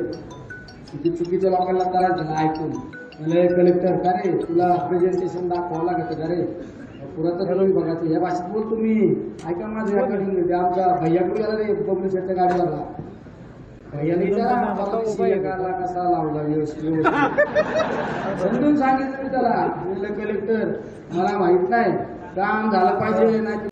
किती चुकीच्या लोकांना त्रास झाला ऐकून. कलेक्टर का रे तुला प्रेझेंटेशन दाखवावं लागत का रे? पुरातत्व विभागाचं या भाषेत बोल तुम्ही. ऐका माझं रेकॉर्डिंग. आमचा भैयाकडे गेला रे पब्लिशरच्या गाडीला. भैयाला कसा लावला व्यवस्थित समजून सांगितलं मी त्याला. कलेक्टर मला माहित नाही, काम झालं पाहिजे. नाही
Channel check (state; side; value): identical; both; correlation 1.00